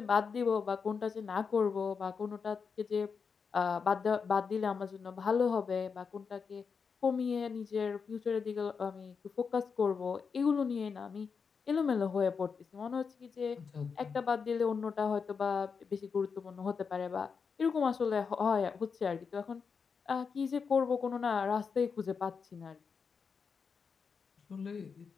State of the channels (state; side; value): quieter; right; 5.7 dB